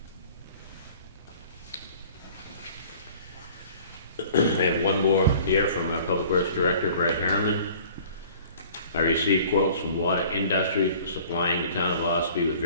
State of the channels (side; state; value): both; inverted; correlation -0.49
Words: I have one more here from our Public Works Director, Brad Harriman. I received quotes from Water Industries for supplying the town of Ossipee with